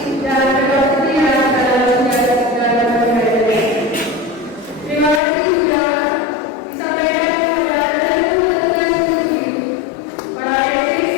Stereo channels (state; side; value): drops out; right; at 5.2 s